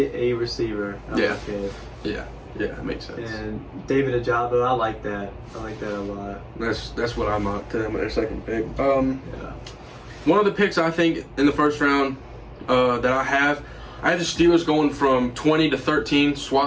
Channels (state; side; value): identical; both; correlation 1.00